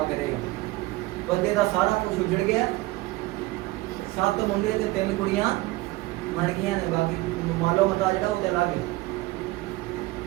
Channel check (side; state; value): left; quieter; 19.9 dB